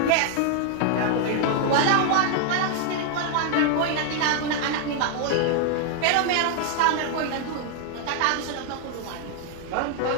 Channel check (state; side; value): different; both; correlation 0.00